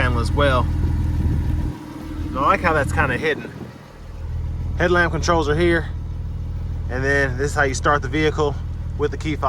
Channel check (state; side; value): identical; both; correlation 1.00